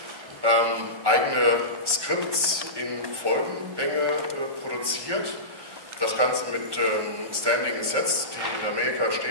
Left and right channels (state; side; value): late; left; 1.2 ms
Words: Eigene Skripts in Folgenlänge produziert. Das Ganze mit Standing Sets, die in Amerika